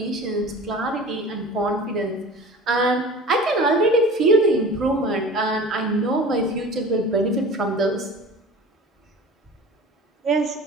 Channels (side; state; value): both; normal; correlation 0.39